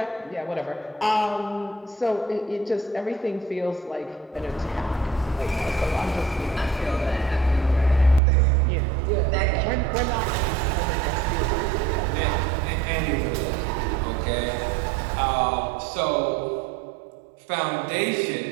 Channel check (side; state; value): left; drops out; at 8.2 s